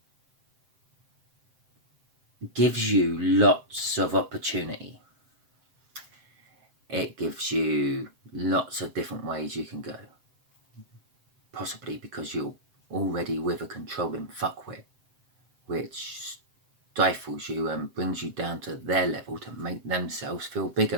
gives you lots of opportunity. It gives you lots of different ways you can go. Possibly because you're already with a controlling fuckwit, which stifles you and brings you down to their level to make themselves feel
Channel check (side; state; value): left; late; 7.8 ms